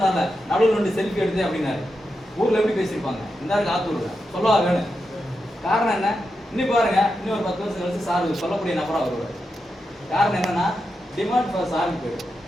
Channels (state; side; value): normal; both; correlation 0.87